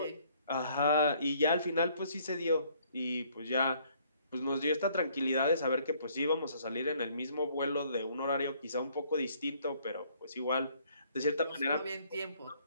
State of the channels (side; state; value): both; inverted; correlation -0.63